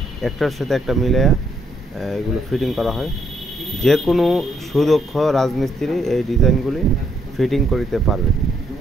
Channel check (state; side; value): normal; both; correlation 0.73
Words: একটার সাথে একটা মিলিয়ে এগুলো ফিটিং করা হয়। যে কোনো সুদক্ষ রাজমিস্ত্রি এই ডিজাইনগুলি ফিটিং করিতে পারবে।